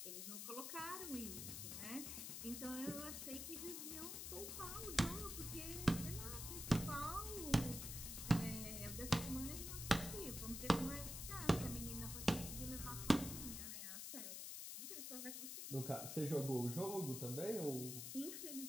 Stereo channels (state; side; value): noise; left; hiss, 5 dB below the sound